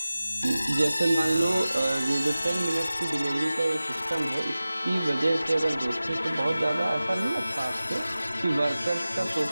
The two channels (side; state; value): both; inverted; correlation -0.96